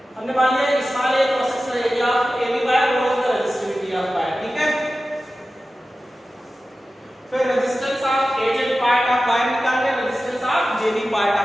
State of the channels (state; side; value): normal; both; correlation 0.95